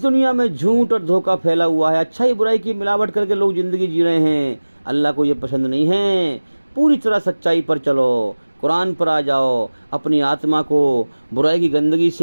दुनिया में झूठ और धोखा फैला हुआ है, अच्छाई बुराई की मिलावट करके लोग ज़िंदगी जी रहे हैं। अल्लाह को ये पसंद नहीं है। पूरी तरह सच्चाई पर चलो, कुरान पर आ जाओ, अपनी आत्मा को बुराई की गंदगी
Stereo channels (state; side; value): inverted; both; correlation -1.00